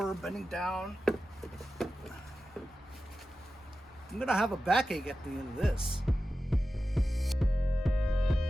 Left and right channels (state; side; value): normal; both; correlation 0.93